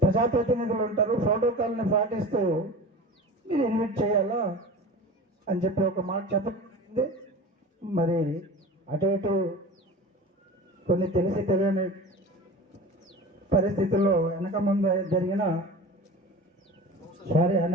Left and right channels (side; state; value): both; normal; correlation 0.35